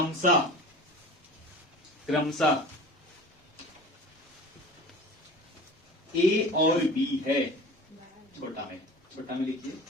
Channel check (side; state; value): both; normal; correlation 0.38